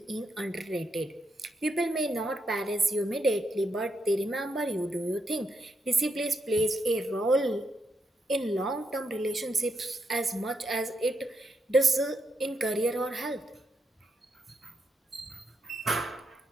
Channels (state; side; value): normal; both; correlation 0.81